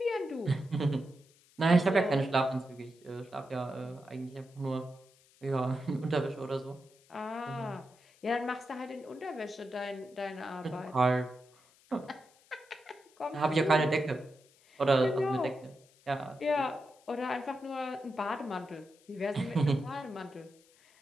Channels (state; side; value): noise; left; hiss, 29 dB below the sound